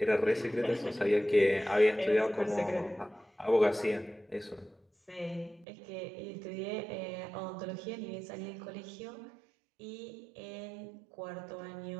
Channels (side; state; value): left; drops out; at 5.7 s